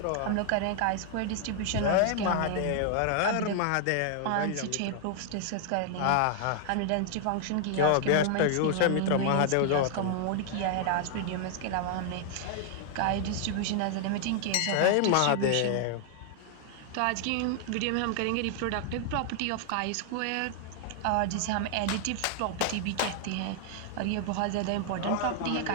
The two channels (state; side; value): different; both; correlation 0.00